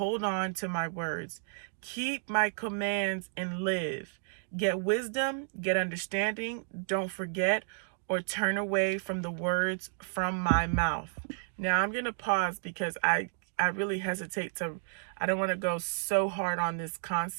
on to my words. Keep my commands and live. Get wisdom, get understanding. Don't forget or turn away from the words from my mouth. Now I'm going to pause because I really hesitate I don't want to go so hard on this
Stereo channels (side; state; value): left; silent; digital silence